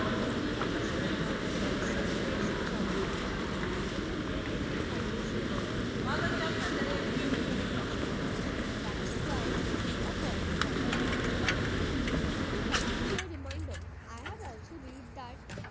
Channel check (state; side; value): identical; both; correlation 1.00